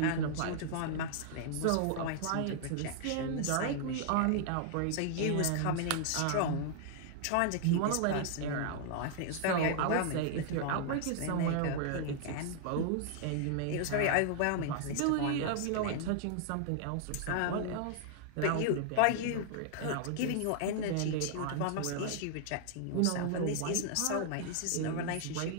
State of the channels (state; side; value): different; both; correlation 0.00